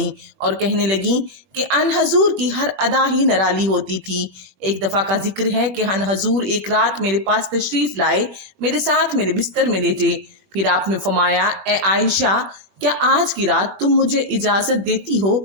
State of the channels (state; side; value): late; left; 21 ms